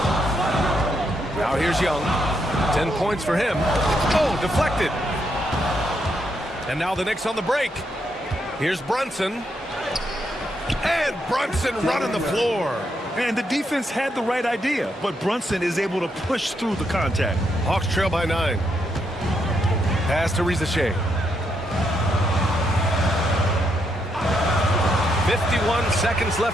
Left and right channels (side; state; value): both; normal; correlation 0.79